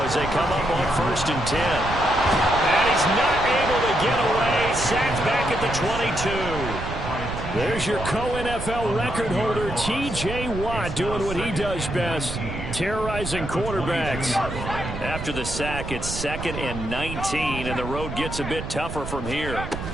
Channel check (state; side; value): noise; right; rumble, 7 dB below the sound